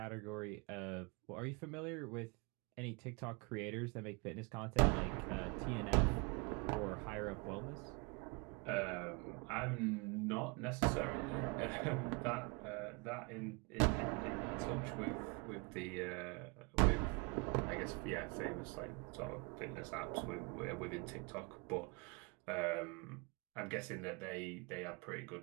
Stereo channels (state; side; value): quieter; left; 29.8 dB